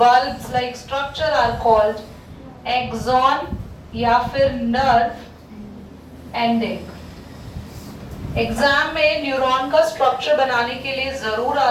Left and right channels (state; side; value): identical; both; correlation 1.00